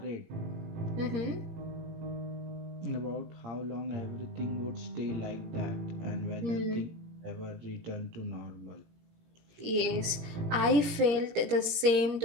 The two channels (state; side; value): late; left; 18 ms